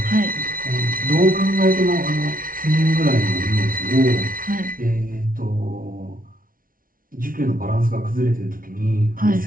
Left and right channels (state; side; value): late; left; 0.41 ms